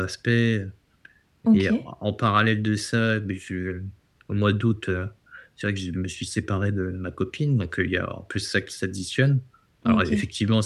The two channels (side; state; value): both; identical; correlation 1.00